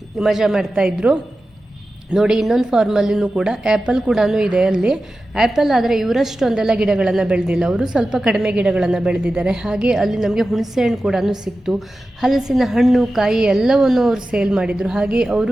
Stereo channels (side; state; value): both; normal; correlation 0.93